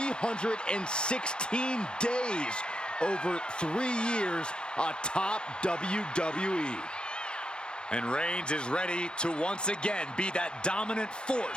days over 3 years atop WWE. And Reigns is ready to once again be that dominant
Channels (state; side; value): late; right; 0.050 ms